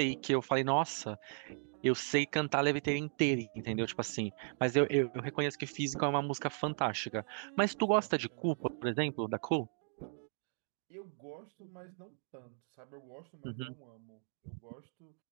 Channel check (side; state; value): left; silent; 54 dB below the other